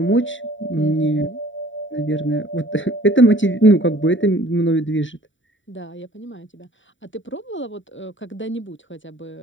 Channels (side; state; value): right; late; 0.55 ms